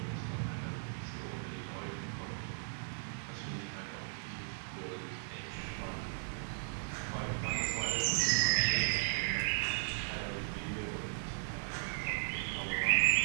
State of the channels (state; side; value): silent; left; digital silence